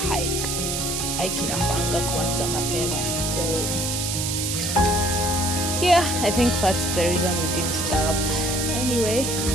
hike. Hike inafanga kuanza mapema. So yeah, I think that's the reason we didn't stop. Anyway,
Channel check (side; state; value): right; noise; hiss, 1 dB below the sound